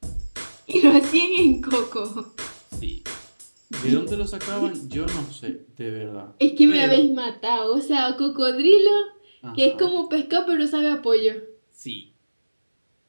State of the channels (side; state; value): both; inverted; correlation -1.00